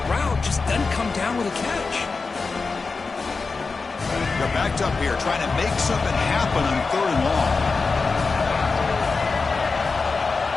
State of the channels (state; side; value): quieter; right; 4.3 dB